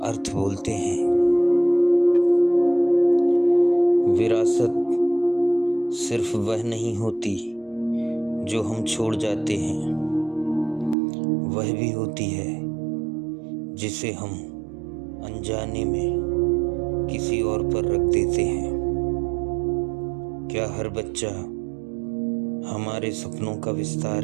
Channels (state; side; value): drops out; left; at 11.0 s